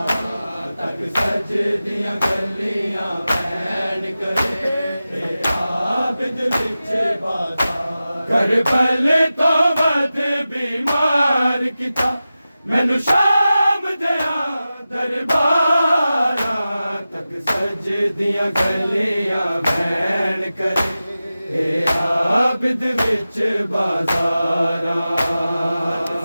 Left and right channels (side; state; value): both; inverted; correlation -0.94